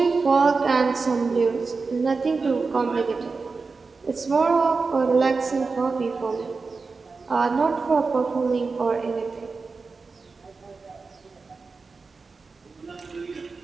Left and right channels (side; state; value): left; quieter; 4.3 dB